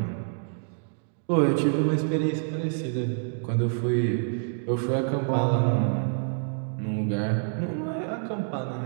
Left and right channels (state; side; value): silent; left; digital silence